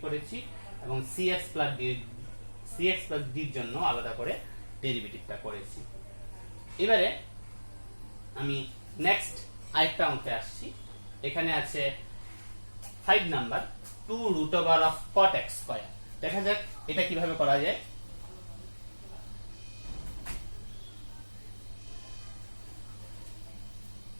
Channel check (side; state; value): both; inverted; correlation -1.00